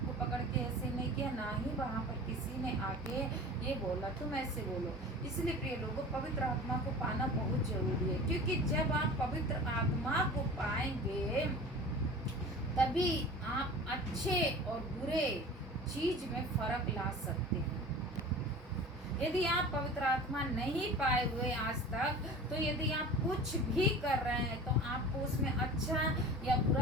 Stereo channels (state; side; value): normal; both; correlation 0.38